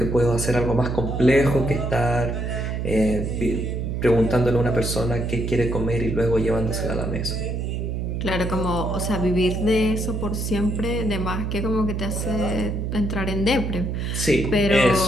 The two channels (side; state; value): right; noise; hum, 2 dB below the sound